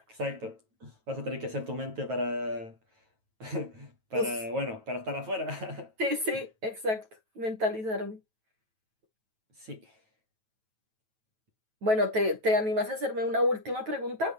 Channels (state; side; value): late; left; 9.2 ms